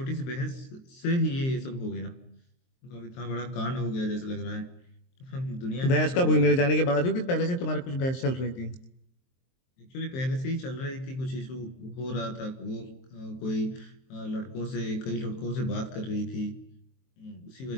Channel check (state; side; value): late; right; 23 ms